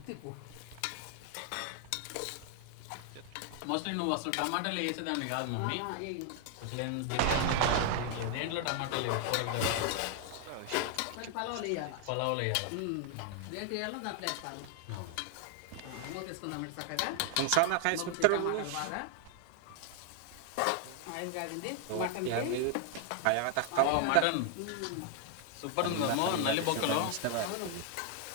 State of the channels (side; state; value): both; different; correlation 0.00